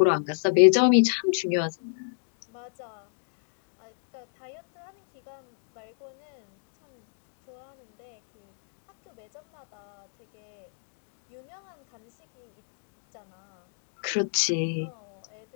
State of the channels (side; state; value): right; silent; digital silence